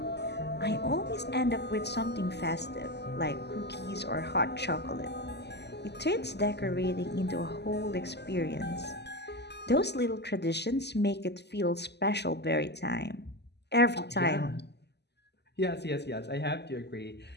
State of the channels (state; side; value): late; right; 0.49 ms